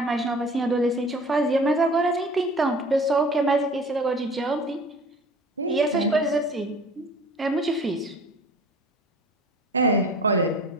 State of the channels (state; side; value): normal; both; correlation 0.44